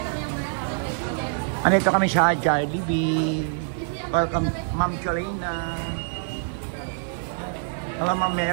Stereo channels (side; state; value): left; silent; digital silence